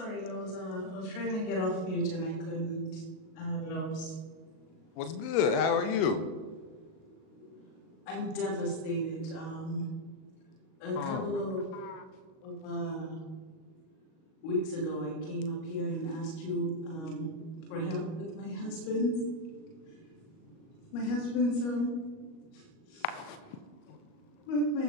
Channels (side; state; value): right; late; 38 ms